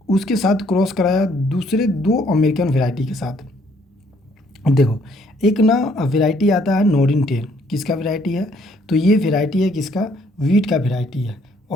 उसके साथ क्रॉस कराया दूसरे दो अमेरिकन वेराइटी के साथ। देखो, एक ना वेराइटी आता है नोरिन 10, किसका वेराइटी है? तो ये वेराइटी है किसका? वीट का वेराइटी है।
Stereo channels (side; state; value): both; normal; correlation 0.65